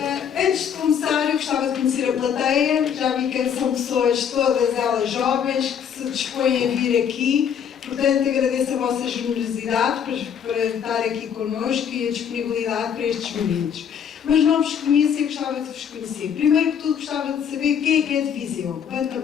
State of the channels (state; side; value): quieter; right; 8.0 dB